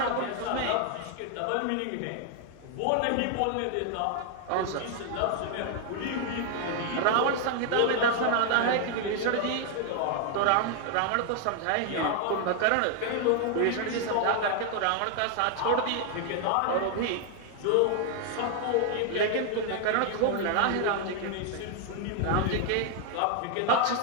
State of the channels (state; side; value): different; both; correlation 0.00